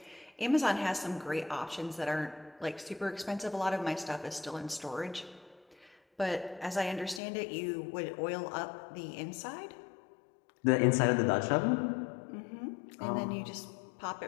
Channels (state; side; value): drops out; right; at 7.2 s